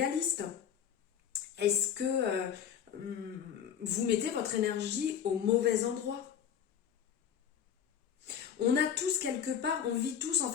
Est-ce que vous mettez votre énergie au mauvais endroit? On a tous quelque part, on vit tous en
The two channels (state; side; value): quieter; right; 8.6 dB